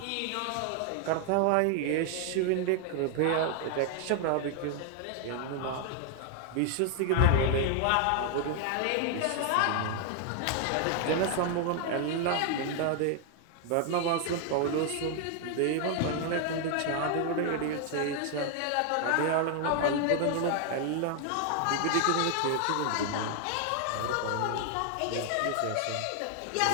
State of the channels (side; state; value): both; different; correlation 0.00